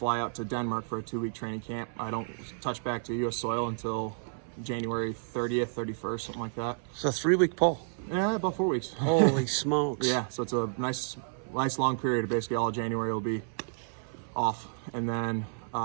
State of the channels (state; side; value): silent; left; 57 dB below the other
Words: out to Denmark for a 2-week training camp. I don't touch back to U.S. soil until January 30th, 31st, something like that. So 3-week pull. Yeah, about 4 weeks. Holy smokes. Yeah, so it's a nice long period. Basically, all January will be off. And then